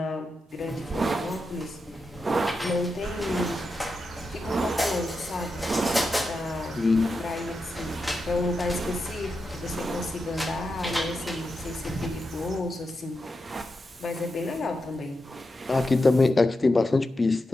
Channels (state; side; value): normal; both; correlation 0.88